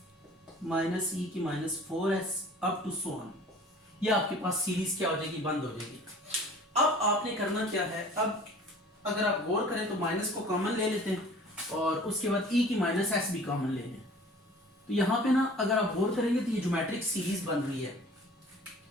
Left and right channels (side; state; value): both; normal; correlation 0.47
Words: माइनस e की minus 4s up to so on. ये आपके पास सीरीज क्या हो जाएगी, बंद हो जाएगी। अब आपने करना क्या है, अब अगर आप गौर करें तो माइनस को कॉमन ले लेते हैं और उसके बाद e की माइनस s भी कॉमन ले लें। तो यहाँ पे ना अगर आप गौर करेंगे तो ये ज्योमेट्रिक सीरीज बन रही है,